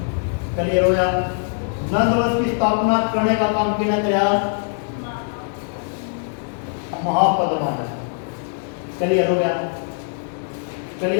क्लियर हो गया? नंदवंश की स्थापना करने का काम किसने किया? महापद्मानंद। क्लियर हो गया?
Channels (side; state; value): right; silent; 64 dB below the other